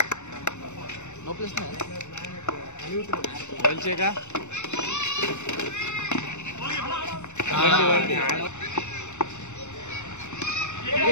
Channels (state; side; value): late; right; 0.83 ms